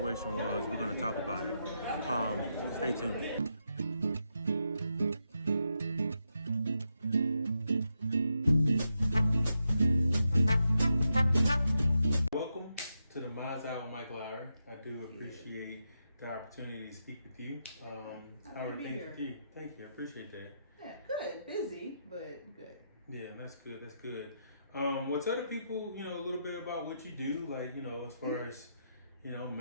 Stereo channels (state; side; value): inverted; both; correlation -0.84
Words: was. We're going to talk about it. Stay tuned. Welcome to the Minds Out with Mike Lowry. I do appreciate the opportunity to speak with you. How are things with you? Thank you. I appreciate that. Yeah, good. Busy, but good. Yeah, that's good. That's good. Well, tell the people, a little bit about what you do, like, as far as,